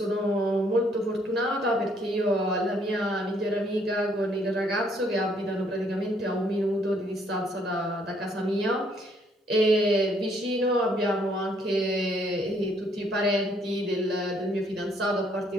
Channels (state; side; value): normal; both; correlation 0.67